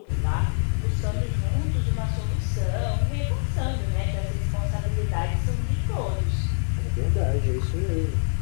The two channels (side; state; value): right; silent; digital silence